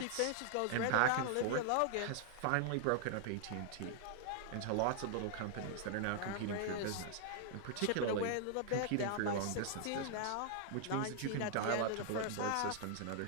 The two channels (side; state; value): both; different; correlation 0.00